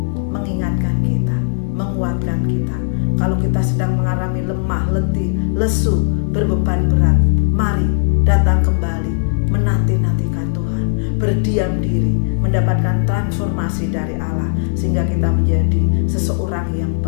mengingatkan kita, menguatkan kita. Kalau kita sedang mengalami lemah, letih, lesu, berbeban berat, mari datang kembali menanti-nantikan Tuhan, berdiam diri, mendapatkan transformasi dari Allah, sehingga kita menjadi seseorang yang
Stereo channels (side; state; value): right; silent; digital silence